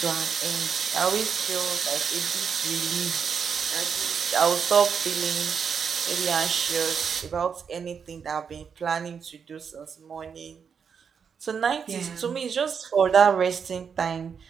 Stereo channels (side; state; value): left; quieter; 6.6 dB